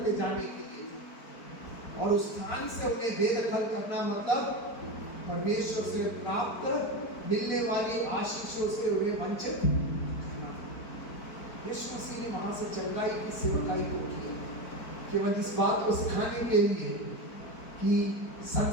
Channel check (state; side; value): late; right; 4.5 ms